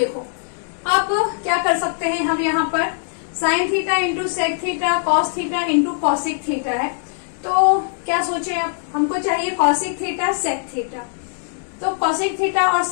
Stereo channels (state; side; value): silent; right; digital silence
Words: अब क्या कर सकते हैं हम, यहाँ पर sine theta into sec theta cos theta into cosec theta है, तो क्या सोचे अब हमको चाहिए कॉसिक थीटा सेक थीटा, तो कॉसिक थीटा और